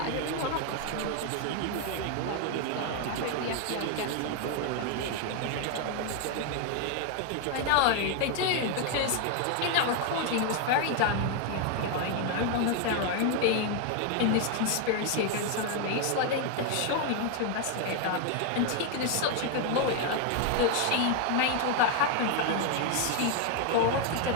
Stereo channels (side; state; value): both; different; correlation 0.01